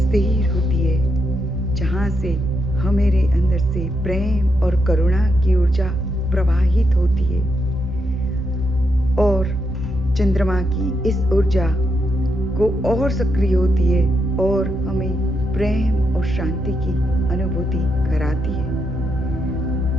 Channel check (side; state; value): both; normal; correlation 0.81